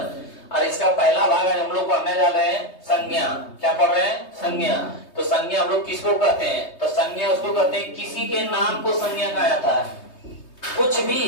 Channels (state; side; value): late; right; 3.2 ms